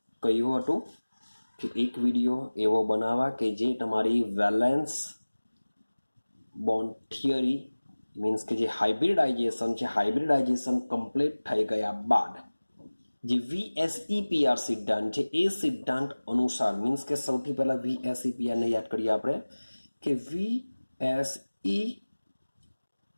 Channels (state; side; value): inverted; both; correlation -1.00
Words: કહ્યું હતું કે એક વિડીયો એવો બનાવવા કે જે તમારી વેલેન્સ બોન્ડ થિયરી મીન્સ કે જે હાઇબ્રિડાઇઝેશન કમ્પ્લીટ થઈ ગયા બાદ જે VSEPR સિદ્ધાંત છે એ સિદ્ધાંત અનુસાર મીન્સ કે સૌથી પહેલા VSEPR ને યાદ કરીએ આપણે કે